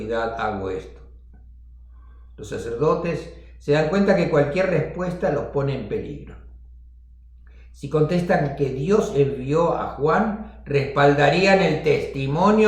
hago esto. Los sacerdotes se dan cuenta que cualquier respuesta los pone en peligro. Si contestan que Dios envió a Juan, respaldarían el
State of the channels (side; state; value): both; identical; correlation 1.00